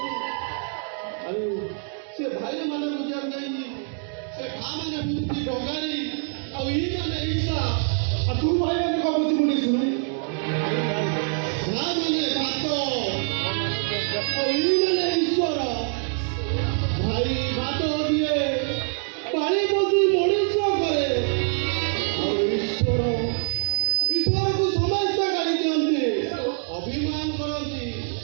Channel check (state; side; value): silent; left; 55 dB below the other